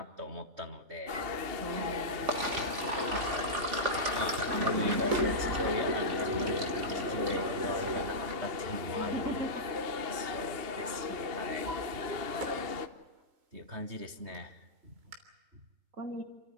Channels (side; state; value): left; late; 3.5 ms